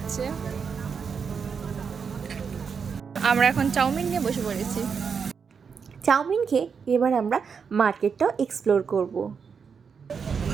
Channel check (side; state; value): left; quieter; 6.1 dB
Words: আমরা এখন চাউমিন নিয়ে বসে পড়েছি। চাউমিন খেয়ে এবার আমরা মার্কেটটাও এক্সপ্লোর করব।